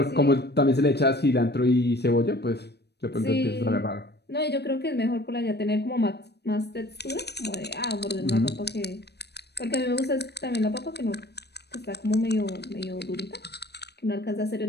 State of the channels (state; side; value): late; right; 0.48 ms